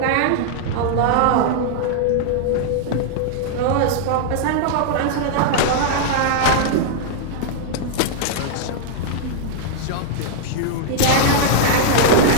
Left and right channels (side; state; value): both; different; correlation -0.01